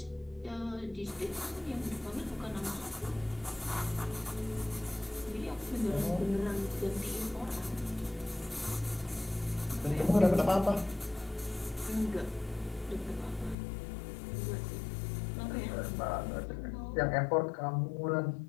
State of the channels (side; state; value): right; drops out; at 13.6 s